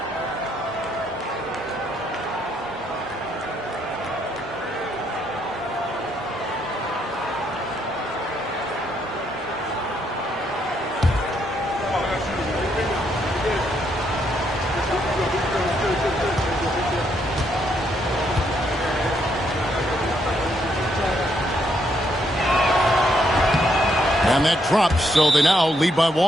And that drops, so they now lead by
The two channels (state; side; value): normal; both; correlation 0.74